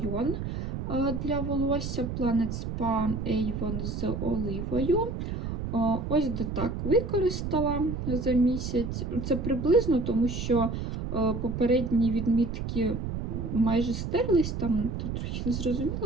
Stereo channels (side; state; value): right; noise; rumble, 4 dB below the sound